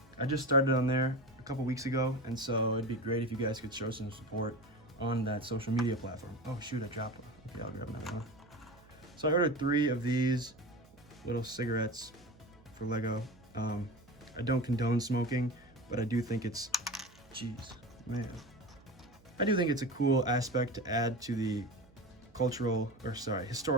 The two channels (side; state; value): right; noise; hum, 27 dB below the sound